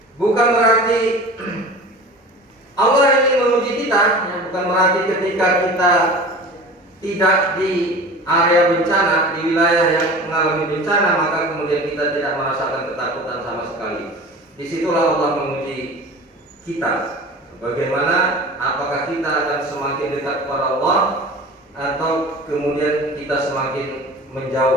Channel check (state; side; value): normal; both; correlation 0.38